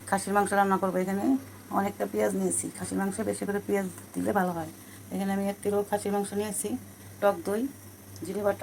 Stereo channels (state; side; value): identical; both; correlation 1.00